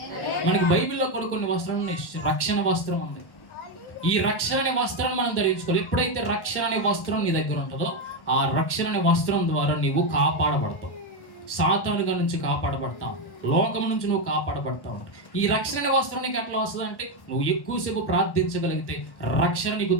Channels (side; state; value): right; late; 1.1 ms